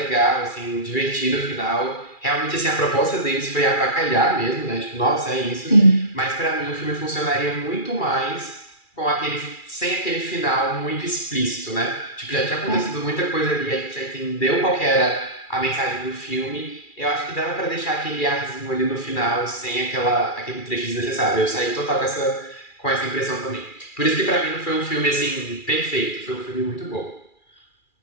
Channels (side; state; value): right; late; 2.4 ms